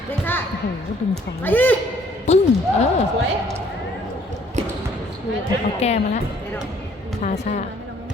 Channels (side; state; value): both; normal; correlation 0.61